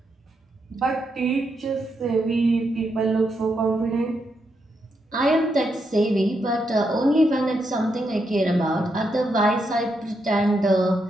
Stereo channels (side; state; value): both; normal; correlation 0.81